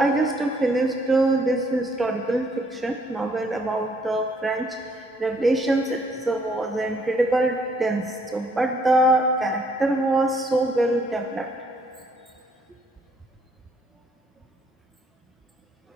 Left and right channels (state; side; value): normal; both; correlation 0.66